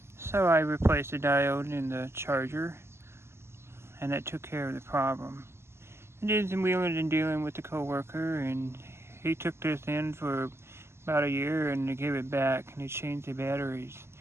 So I replaced the diode in the charger, and that took care of the problem. I did some wheeling and dealing with the coworker, and he took this in for about a year, and they gave it back, and they changed the batteries.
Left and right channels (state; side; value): late; left; 0.12 ms